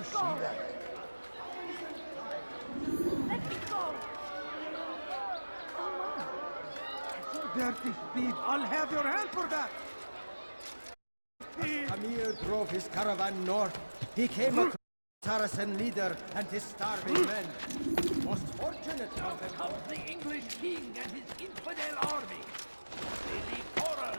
go! Let me go! Dirty thief! I'll have your hand for that! Amir drove his caravan north. He came across the Saracen leader and his starving men. Most fortunate Now of them comes the English king and his infidel army. They leave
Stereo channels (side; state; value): both; inverted; correlation -1.00